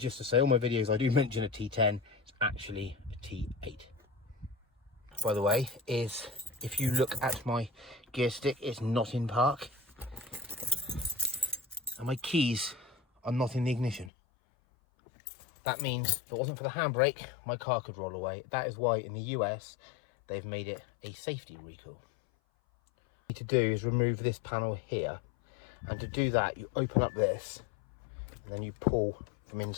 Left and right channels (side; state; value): right; drops out; at 14.1 s